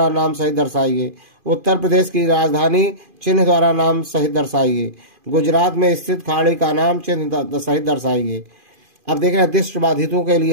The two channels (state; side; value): late; left; 2.5 ms